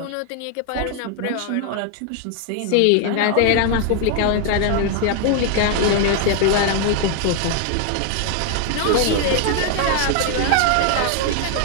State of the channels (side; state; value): both; different; correlation 0.00